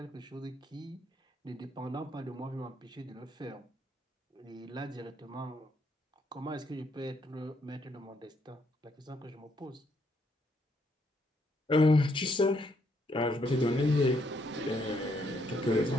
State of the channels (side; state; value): both; normal; correlation 0.73